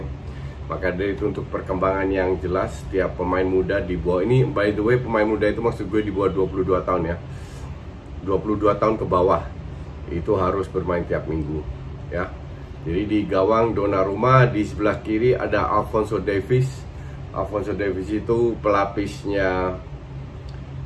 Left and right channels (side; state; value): both; identical; correlation 1.00